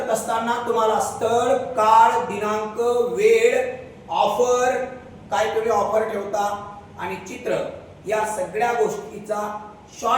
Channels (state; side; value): identical; both; correlation 1.00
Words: असताना तुम्हाला स्थळ, काळ, दिनांक, वेळ, ऑफर, काय तुम्ही ऑफर ठेवता आणि चित्र, या सगळ्या गोष्टीचा